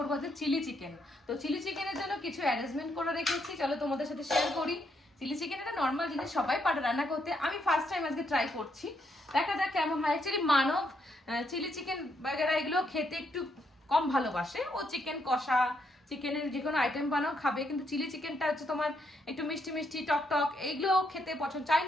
যে চিলি চিকেন। তো চিলি চিকেনের জন্য কিছু অ্যারেঞ্জমেন্ট করে রেখেছি, চলো তোমাদের সাথে শেয়ার করি। চিলি চিকেন একটা নর্মাল জিনিস, সবাই পারে রান্না করতে, আমি ফার্স্ট টাইম আজকে ট্রাই করছি, দেখা যাক কেমন হয়। অ্যাকচুয়ালি মানব চিলি চিকেন বাগেরা এগুলো খেতে একটু কম ভালোবাসে, ও চিকেন কষা চিকেনের যে কোনো আইটেম বানাও খাবে, কিন্তু চিলি চিকেনটা হচ্ছে তোমার একটু মিষ্টি মিষ্টি টক টক এইগুলো খেতে পছন্দ,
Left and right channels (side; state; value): both; normal; correlation 0.76